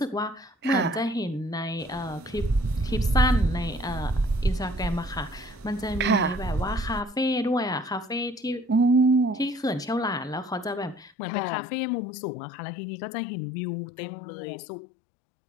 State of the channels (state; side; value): drops out; right; at 11.1 s